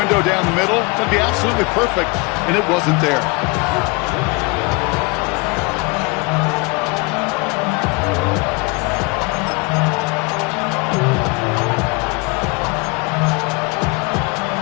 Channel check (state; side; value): quieter; right; 27.7 dB